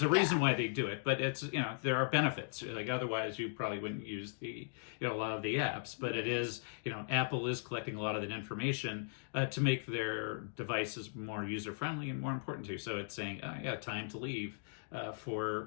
a reason why they do it, but it's there are benefits. Like otherwise, you probably wouldn't use a lot of the apps. But it is Apple is collecting a lot of that information to make their devices more user friendly and more important to you. So it's saying, time to leave. For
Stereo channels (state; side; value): silent; right; digital silence